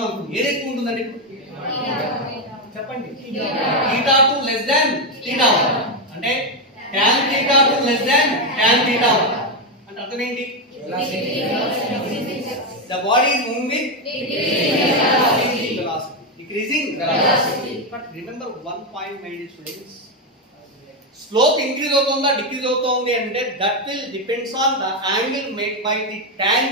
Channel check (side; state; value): both; normal; correlation 0.07